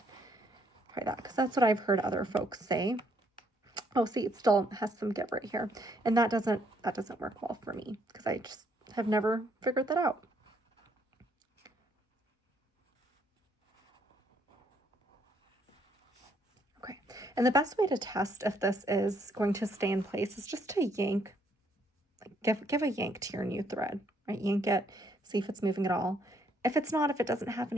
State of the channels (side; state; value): both; normal; correlation 0.69